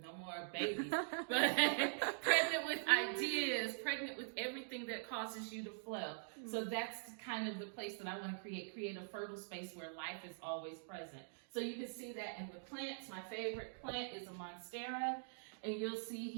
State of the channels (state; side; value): silent; left; digital silence